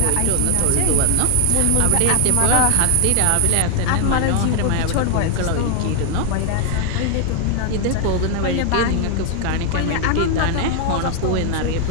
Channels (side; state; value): both; different; correlation 0.00